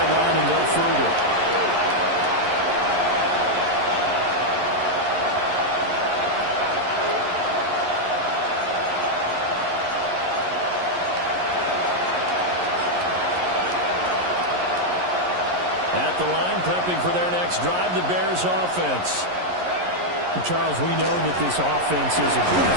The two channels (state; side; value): late; left; 11 ms